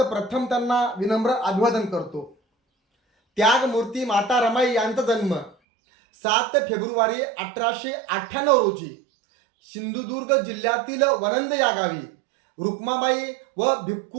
प्रथम त्यांना विनम्र अभिवादन करतो. त्यागमूर्ती माता रमाई यांचा जन्म 7 फेब्रुवारी 1898 रोजी सिंधुदुर्ग जिल्ह्यातील वनंद या गावी रुक्माबाई व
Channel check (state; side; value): drops out; left; at 5.6 s